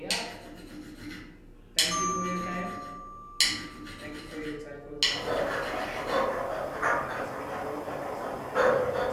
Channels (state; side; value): identical; both; correlation 1.00